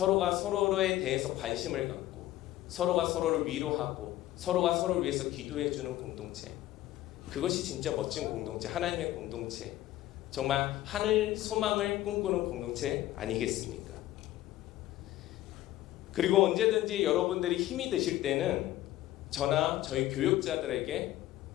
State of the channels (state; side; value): quieter; right; 14.9 dB